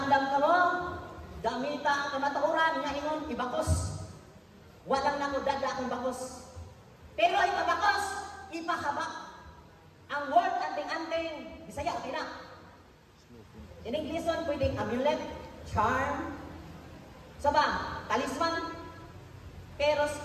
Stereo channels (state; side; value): identical; both; correlation 1.00